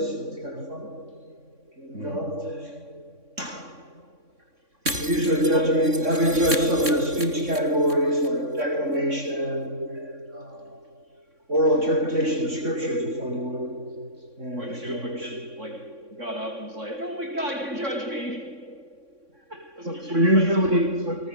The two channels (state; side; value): late; left; 3.6 ms